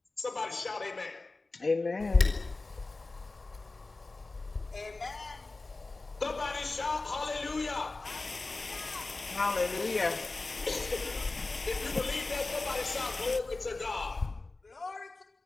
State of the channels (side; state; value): right; quieter; 3.4 dB